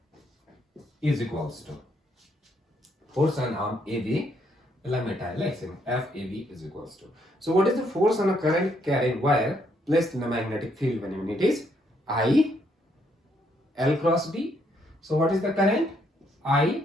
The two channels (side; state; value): both; normal; correlation 0.72